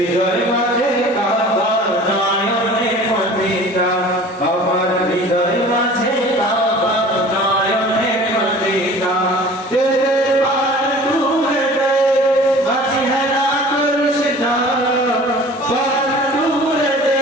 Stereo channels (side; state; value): both; normal; correlation 0.44